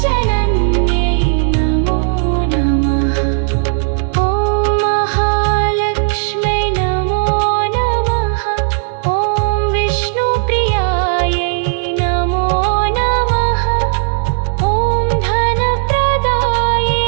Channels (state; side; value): silent; left; 67 dB below the other